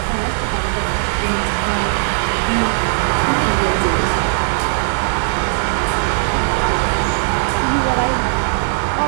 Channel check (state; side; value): silent; left; 68 dB below the other